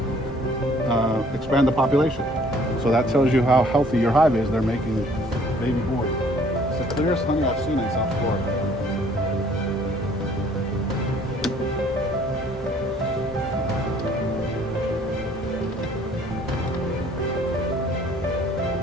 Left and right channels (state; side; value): normal; both; correlation 0.58